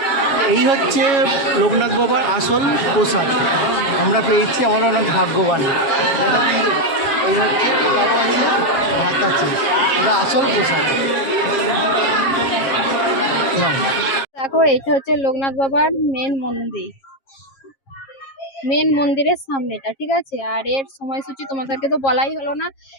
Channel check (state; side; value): late; right; 7.4 ms